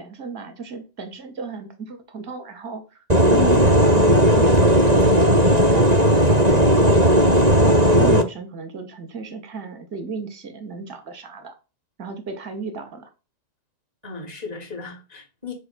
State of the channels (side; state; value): left; late; 1.9 ms